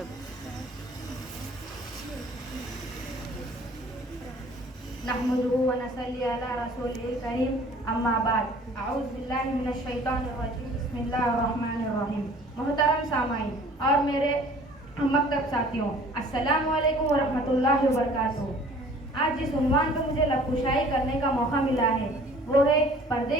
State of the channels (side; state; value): both; normal; correlation 0.51